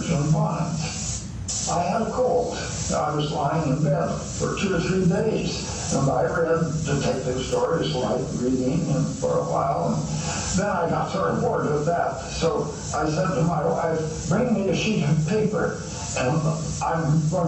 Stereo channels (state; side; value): identical; both; correlation 1.00